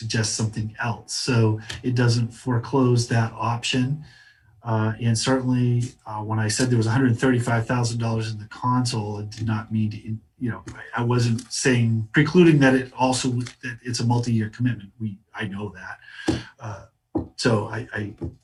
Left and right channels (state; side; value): identical; both; correlation 1.00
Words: something else. So it doesn't foreclose that option. And certainly when I said there was $135,000 in the console, it did not mean to, I wasn't saying precluding that that it's a multi-year commitment. I know that. So I